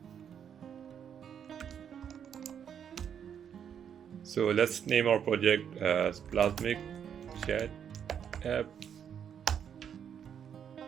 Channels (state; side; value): quieter; left; 8.3 dB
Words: So let's name our project as Plasmic Chat App.